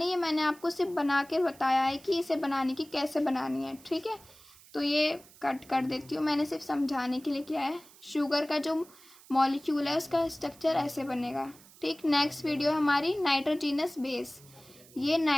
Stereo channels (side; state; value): right; noise; hiss, 23 dB below the sound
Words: ये मैंने आपको सिर्फ बना के बताया है कि इसे बनाने की कैसे बनानी है, ठीक है। तो ये कट कर देती हूँ, मैंने सिर्फ समझाने के लिए किया है। शुगर का जो मॉलिक्यूल है उसका स्ट्रक्चर ऐसे बनेगा, ठीक। नेक्स्ट वीडियो हमारी नाइट्रोजिनस बेस। ये